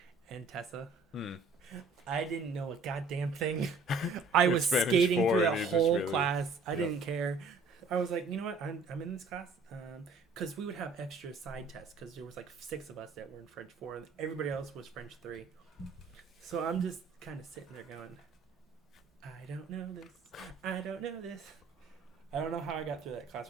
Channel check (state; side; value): quieter; left; 3.9 dB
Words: and Tessa. I didn't know a goddamn thing. I was skating through that whole class. I didn't care. I was like, you know what? I'm in this class because we would have extra side tests because there was like 6 of us that were in French 4 and everybody else was French 3. So I'm just kind of sitting there going, I don't know this. I don't know this. I don't know how I got through that class